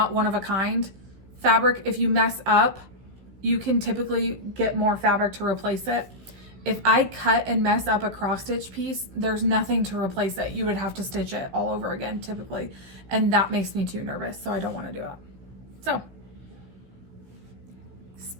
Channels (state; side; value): late; left; 15 ms